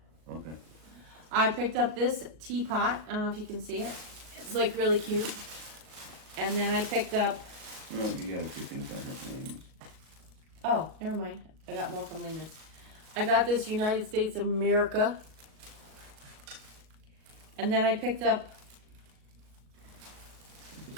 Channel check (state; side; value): late; left; 38 ms